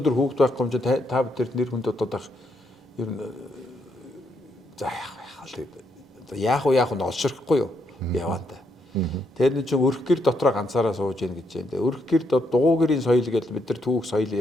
хүүхд байхгүй юм чинь та бүхэн нэр хүнд бодоод байх ер нь за яах вэ олширхгүй юу яваанда. Тэр нэг чинь өрх гэр дотроо ганцаараа сууж ийн гэж байна. Өрх гэр дугуй гэрийн соёл гэдэг бид нар түүх соёл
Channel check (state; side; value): normal; both; correlation 0.76